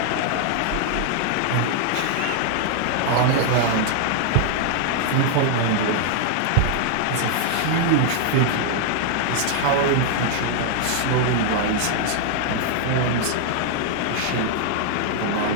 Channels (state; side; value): different; both; correlation 0.00